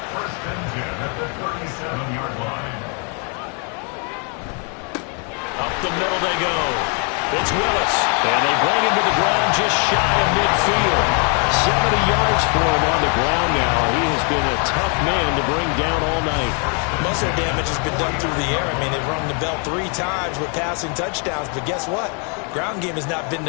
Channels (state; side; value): quieter; right; 38.4 dB